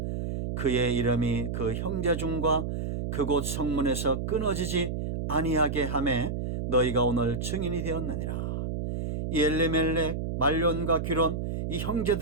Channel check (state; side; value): noise; right; hum, 3 dB below the sound